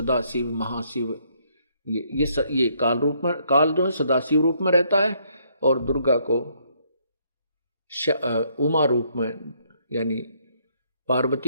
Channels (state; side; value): inverted; both; correlation -0.70